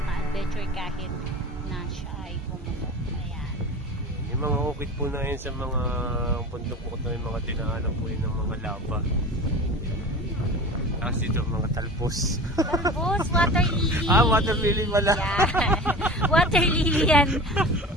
kahit na siya ay pumutok. Ayan. Yung mga ukit po na yun sa mga bundok po ito, yung mga dinaanan po yun ng mga lava. Tapos dito mga talpos. Talpos, water lily. Water lily pala. Yan. Water lily yan.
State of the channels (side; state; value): both; normal; correlation 0.35